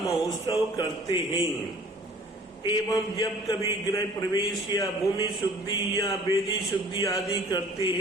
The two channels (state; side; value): normal; both; correlation 0.51